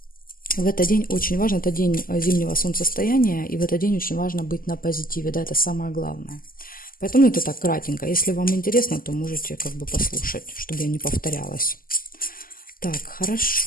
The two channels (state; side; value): late; right; 0.42 ms